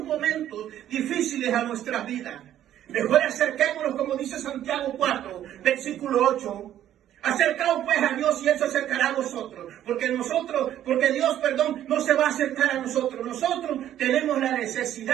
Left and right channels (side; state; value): left; quieter; 11.6 dB